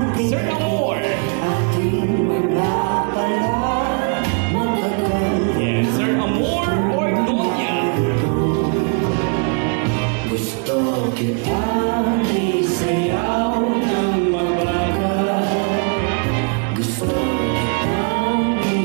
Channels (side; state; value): left; quieter; 37.7 dB